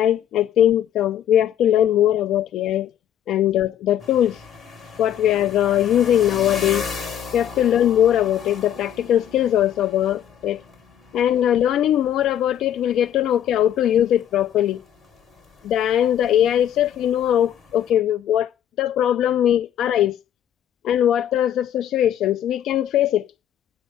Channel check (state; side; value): quieter; right; 10.7 dB